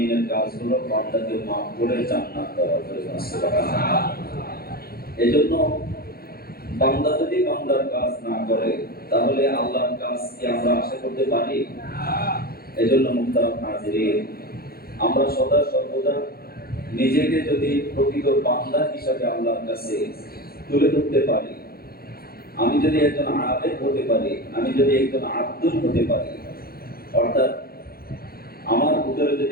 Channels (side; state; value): right; late; 0.44 ms